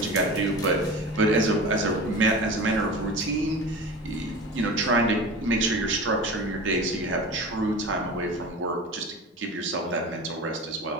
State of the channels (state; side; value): normal; both; correlation 0.32